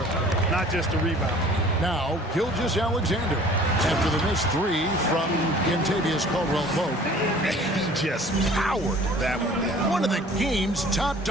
not just a rebounder. Now, Gilgeous-Alexander after the missed 3 from Kentavious Caldwell-Pope. He just powered that one down. One of the game's top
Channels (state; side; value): normal; both; correlation 0.49